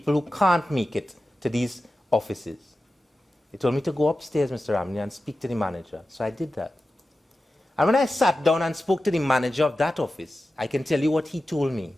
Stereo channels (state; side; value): normal; both; correlation 0.93